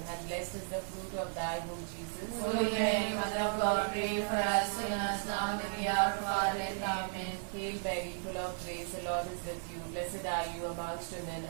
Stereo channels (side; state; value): left; silent; 54 dB below the other